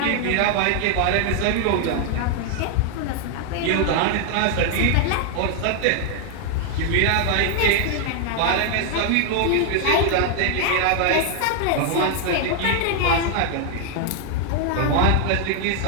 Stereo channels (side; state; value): both; different; correlation 0.00